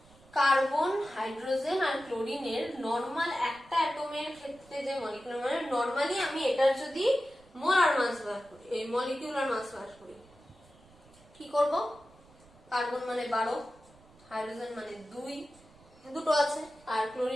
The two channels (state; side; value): noise; right; rumble, 27 dB below the sound